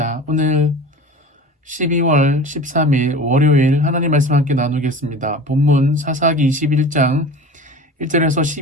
오늘 12월 13일 월요일 하나님 말씀 함께 나누겠습니다. 본문 사사기 21장 1절에서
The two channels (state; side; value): normal; both; correlation 0.37